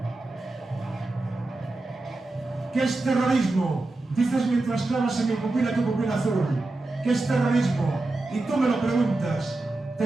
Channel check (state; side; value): quieter; left; 3.0 dB